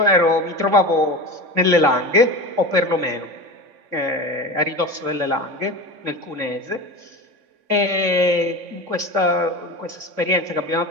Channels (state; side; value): late; left; 3.5 ms